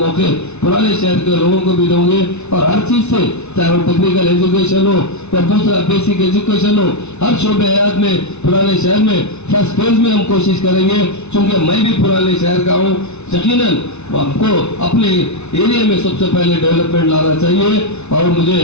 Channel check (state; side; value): late; right; 0.81 ms